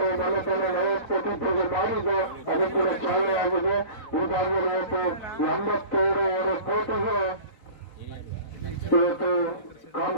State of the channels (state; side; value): late; right; 4.2 ms